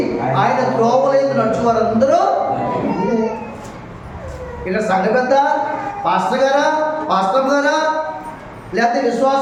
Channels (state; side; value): identical; both; correlation 1.00